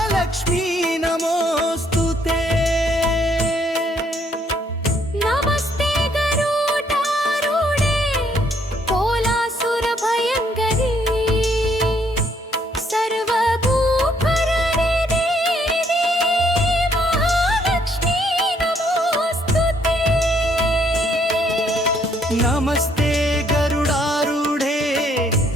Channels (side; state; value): both; normal; correlation 0.68